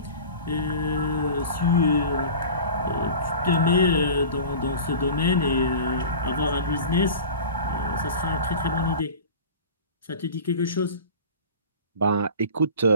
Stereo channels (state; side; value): inverted; both; correlation -0.37